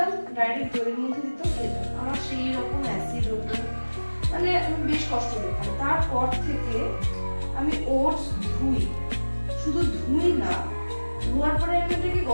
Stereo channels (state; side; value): inverted; both; correlation -1.00